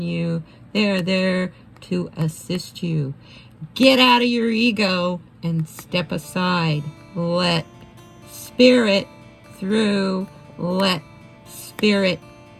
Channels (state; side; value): identical; both; correlation 1.00